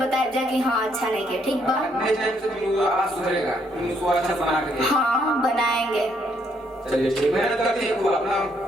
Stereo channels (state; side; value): normal; both; correlation 0.71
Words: जा कि हाँ अच्छा नहीं किया, ठीक बा। नेक्स्ट टाइम से तुम आवाज सुधरेगा, तुम उसको अच्छा बना के दे। हाँ बनाएंगे। चलिए ठीक, मेहनत करते हैं खूब अपना।